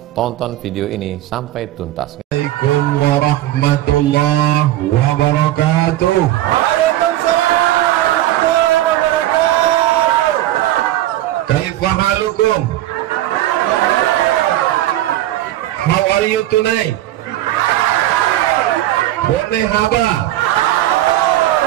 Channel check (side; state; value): left; quieter; 14.3 dB